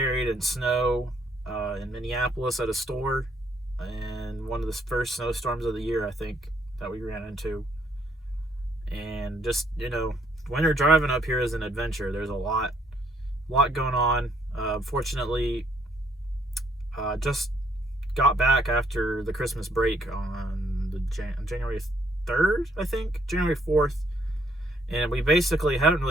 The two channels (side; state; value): both; normal; correlation 0.69